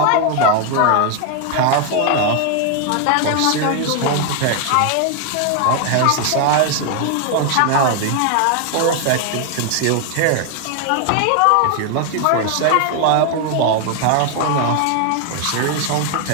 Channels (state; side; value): different; both; correlation 0.01